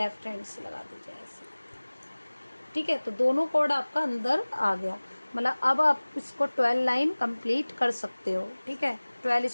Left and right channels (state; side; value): inverted; both; correlation -1.00